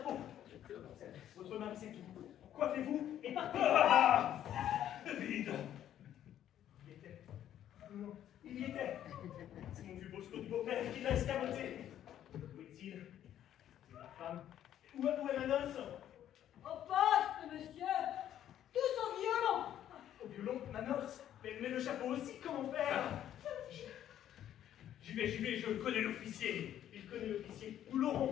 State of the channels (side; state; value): right; quieter; 11.1 dB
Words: Votre mari, c'est tout. Coiffez-vous et partez. Ah, vide. Il y était. Non, il y était. C'est mon vieux Bosco du beau-père qui l'a escamoté. Où est-il? C'est ma femme. Où est ma noce? Au poste, monsieur. Tous au violon. Au violon, ma noce. Mais le chapeau aussi, comment faire? J'y vais, je connais l'officier. Il connaît l'officier. Nous